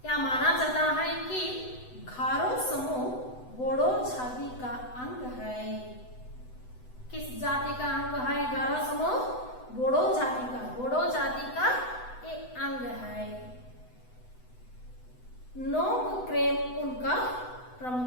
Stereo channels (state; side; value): late; right; 8.0 ms